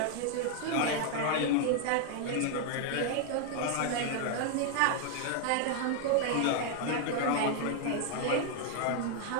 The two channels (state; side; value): different; both; correlation 0.00